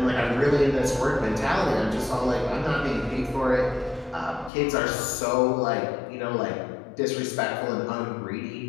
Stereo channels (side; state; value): right; drops out; at 4.5 s